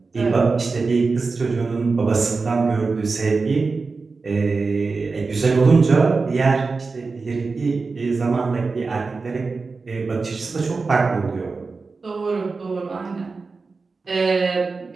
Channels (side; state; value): left; quieter; 4.2 dB